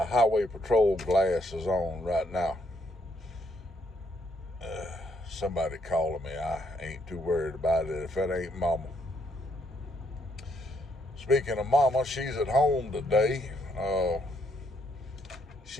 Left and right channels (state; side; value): normal; both; correlation 0.73